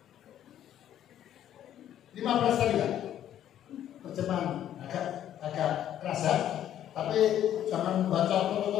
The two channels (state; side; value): quieter; right; 11.1 dB